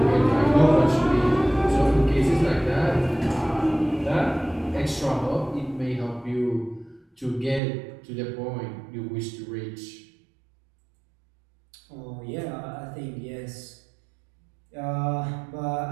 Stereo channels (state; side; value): drops out; left; at 7.6 s